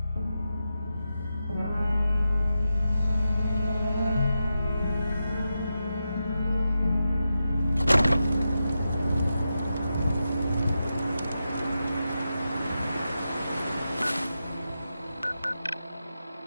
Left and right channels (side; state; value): both; inverted; correlation -0.89